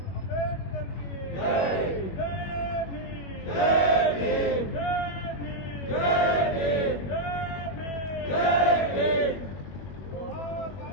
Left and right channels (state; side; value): late; right; 21 ms